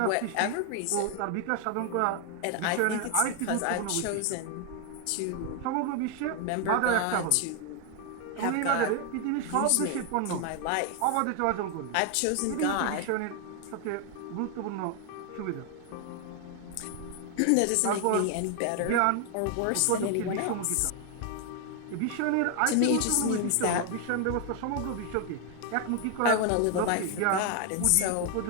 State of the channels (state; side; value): different; both; correlation 0.00